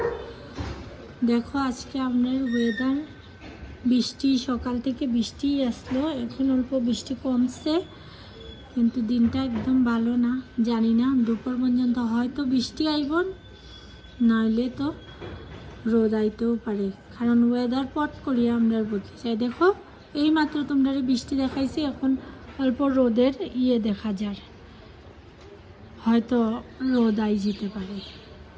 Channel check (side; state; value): both; identical; correlation 1.00